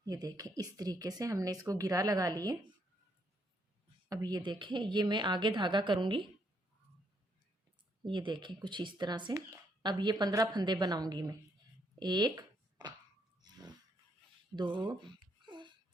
ये देखें, इस तरीके से हमने इसको गिरा लगा लिए। अब ये देखें, ये मैं आगे धागा करूँगी, ये देखें कुछ इस तरह से। अब ये 15 फंदे बनाऊंगी मैं। 1 2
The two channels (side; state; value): both; normal; correlation 0.73